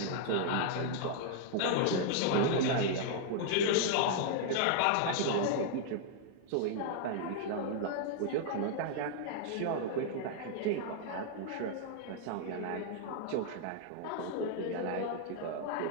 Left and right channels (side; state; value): both; different; correlation -0.01